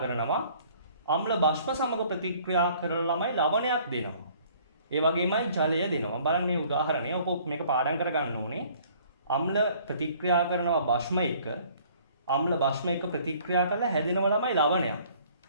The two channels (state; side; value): inverted; both; correlation -0.56